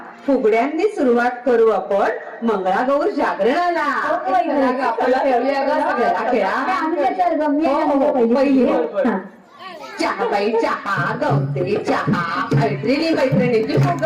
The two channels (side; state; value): both; identical; correlation 1.00